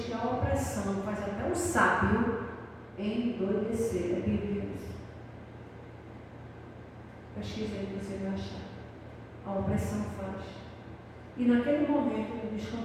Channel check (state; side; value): identical; both; correlation 1.00